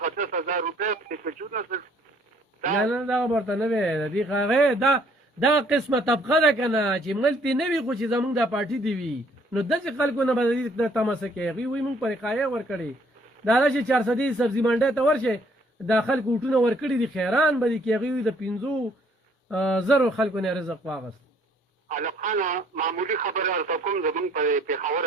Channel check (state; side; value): normal; both; correlation 0.63